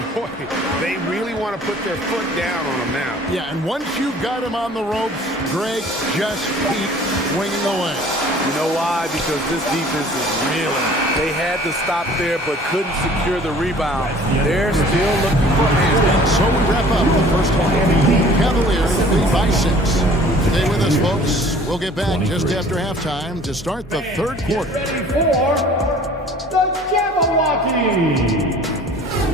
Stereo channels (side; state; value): both; normal; correlation 0.50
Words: Boy, they really want to put their foot down on him now. Yeah, and once you've got him on the ropes, Greg, just keep swinging away. You know why? Because this defense is reeling. They had to stop there but couldn't secure the rebound. They're still looking for hands. And so we wrap up the first half. Cavaliers lead by 6. Stay with us, folks. We'll get back just after halftime to start the third quarter. Ready for the Jabberwocky.